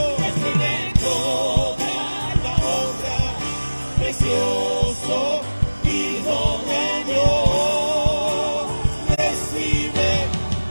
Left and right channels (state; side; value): inverted; both; correlation -1.00